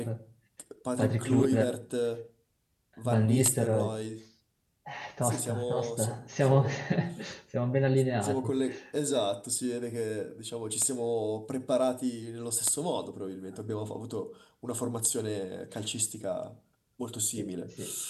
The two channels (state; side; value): identical; both; correlation 1.00